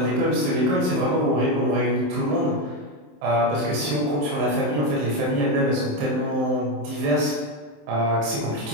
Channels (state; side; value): late; left; 27 ms